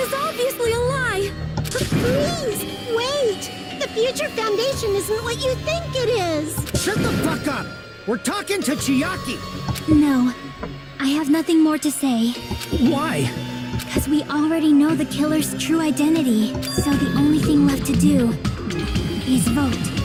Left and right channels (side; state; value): both; identical; correlation 1.00